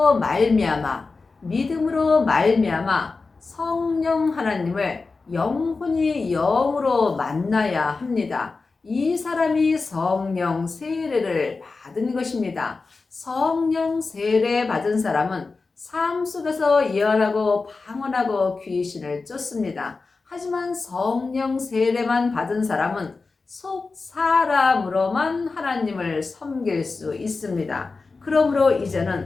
말미암아 믿음으로 말미암아 성령 하나님을 영혼이 영으로 만나야 합니다. 이 사람이 성령 세례를 받은 것입니다. 성령 세례 받은 사람은 삶 속에서 예언하고 방언하고 귀신을 쫓습니다. 하지만 성령 세례만 받은 사람은 속 사람으로만 하나님을 섬길 수 있습니다. 그러므로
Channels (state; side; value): quieter; right; 4.1 dB